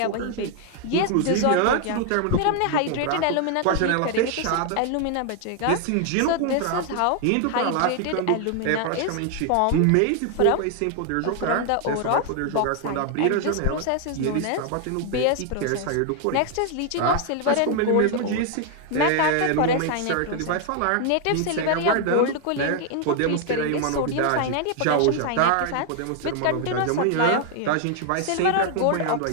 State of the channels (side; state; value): both; different; correlation 0.00